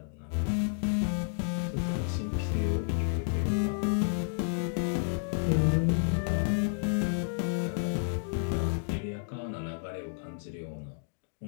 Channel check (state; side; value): silent; right; digital silence